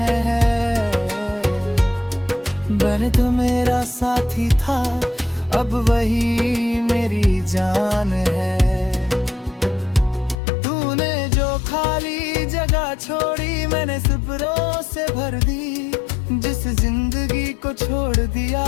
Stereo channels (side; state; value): right; drops out; at 10.4 s